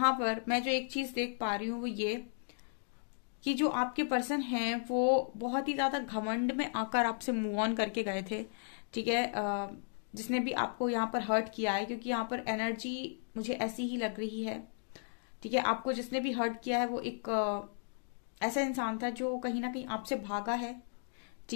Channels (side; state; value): right; silent; digital silence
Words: पर मैं जो एक चीज देख पा रही हूँ वो ये कि जो आपके पर्सन हैं वो बहुत ही ज्यादा घमंड में आकर आपसे मूव ऑन करके गए थे। ठीक है, जिसने भी आपको यहाँ पर हर्ट किया है, क्योंकि यहाँ पर एनर्जी मुझे ऐसी ही लग रही है। ठीक है, आपको जिसने भी हर्ट किया है वो एक ऐसा इंसान था जो कहीं ना कहीं आपसे भागा है।